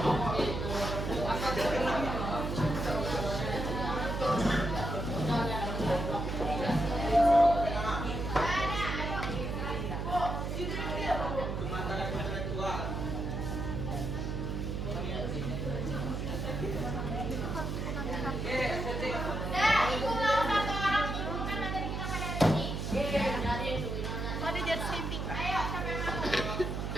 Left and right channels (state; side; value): noise; right; hum, 3 dB below the sound